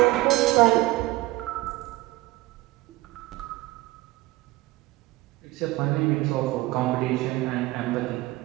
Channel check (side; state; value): left; quieter; 19.4 dB